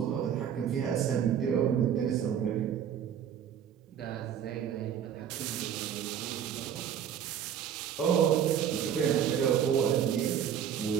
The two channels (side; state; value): left; quieter; 8.9 dB